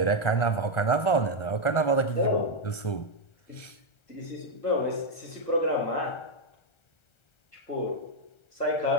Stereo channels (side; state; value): right; late; 1.3 ms